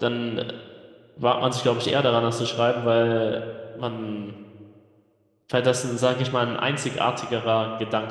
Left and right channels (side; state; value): both; identical; correlation 1.00